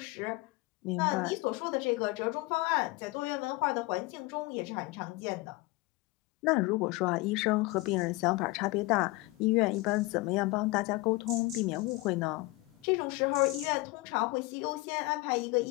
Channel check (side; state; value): right; quieter; 22.0 dB